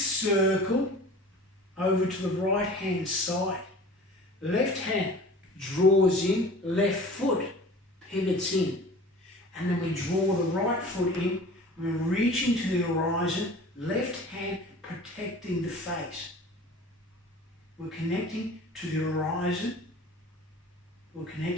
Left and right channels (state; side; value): normal; both; correlation 0.42